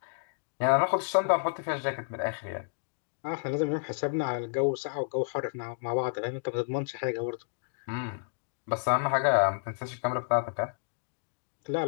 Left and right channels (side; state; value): right; silent; digital silence